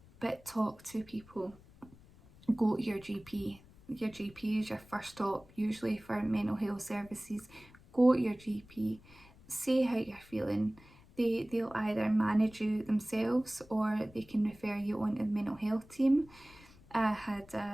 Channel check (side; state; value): left; noise; rumble, 24 dB below the sound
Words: But talk to people. Go to your GP. Your GP is your first stop, usually for mental health services. Go to your GP. Say how you're feeling. They'll either manage you themselves or they can refer you on to the mental health team. I had